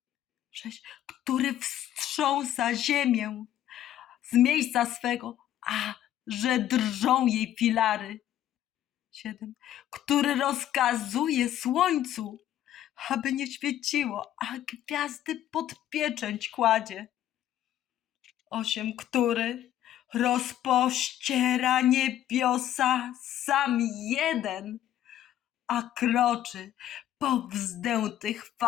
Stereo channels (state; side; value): quieter; right; 11.9 dB